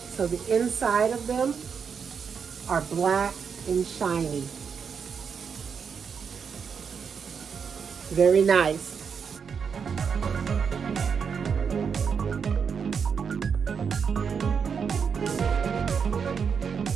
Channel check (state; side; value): quieter; left; 6.4 dB